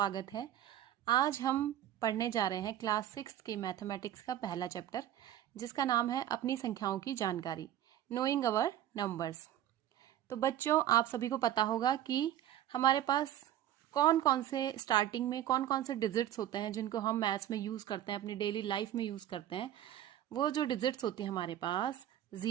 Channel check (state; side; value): quieter; left; 12.0 dB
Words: है। आज हम पढ़ने जा रहे हैं क्लास 6 की मैथमेटिक्स का पहला चैप्टर, जिसका नाम है अपनी संख्याओं की जानकारी, नोइंग अवर नंबर्स। तो बच्चों, आप सभी को पता होगा कि हमारे पास कौन कौन से स्टार्टिंग में कौन कौन से डिजिट्स होते हैं जिनको हम मैथ्स में यूज करते हैं, अपनी डेली लाइफ में यूज करते हैं। वो जो डिजिट्स होती है हमारे पास